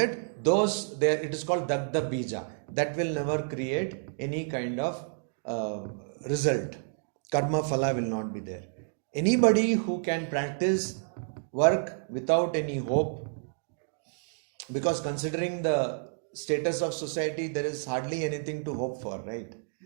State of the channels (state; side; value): silent; left; digital silence